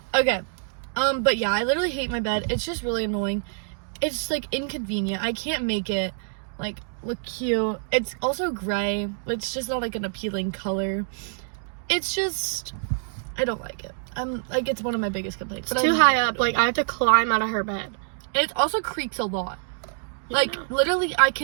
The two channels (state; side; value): silent; left; digital silence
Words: Okay. But yeah, I literally hate my bed. It's just really annoying. It's like inconvenient. I can't make it like look cute. It's also gray. It's just not like an appealing color. It's just, I don't like it. I'm like, it's one of my biggest complaints. it's too high up. Like, I have to climb out of her bed. And it also creaks a lot. Like, literally, I